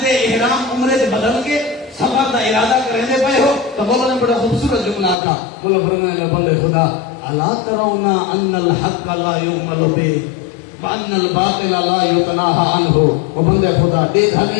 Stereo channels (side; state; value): right; drops out; at 5.2 s